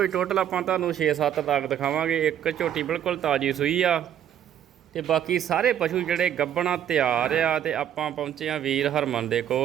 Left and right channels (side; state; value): left; quieter; 10.1 dB